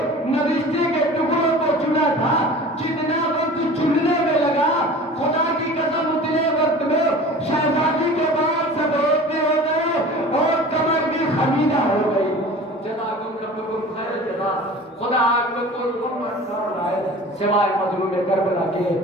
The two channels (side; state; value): both; normal; correlation 0.40